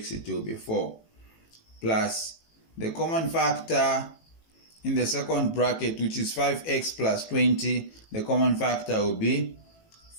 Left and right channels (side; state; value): right; late; 18 ms